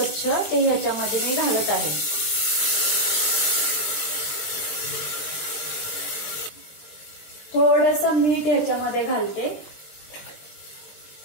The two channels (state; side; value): late; right; 20 ms